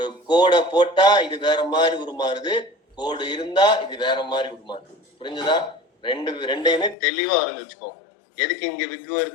கோடை போட்டா இது வேற மாதிரி உருமாறுது, கோடு இருந்தா இது வேற மாதிரி உருமாறுது. புரிஞ்சுதா? ரெண்டையுமே தெளிவா இருந்து வச்சுக்கோ. எதுக்கு இங்க விக்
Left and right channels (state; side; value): drops out; right; at 7.0 s